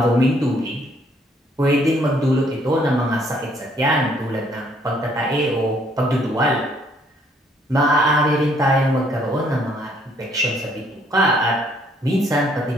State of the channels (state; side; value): normal; both; correlation 0.66